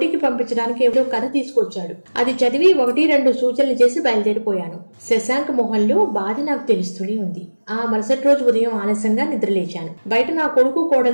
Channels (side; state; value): both; inverted; correlation -1.00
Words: పంపించడానికి ఏదో కథ తీసుకొచ్చాడు. అది చదివి 1-2 సూచనలు చేసి బయలుదేరిపోయాను. శశాంక్ మొహంలో బాధ నాకు తెలుస్తూనే ఉంది. ఆ మరుసటి రోజు ఉదయం ఆలస్యంగా నిద్రలేచాను. బయట నా కొడుకు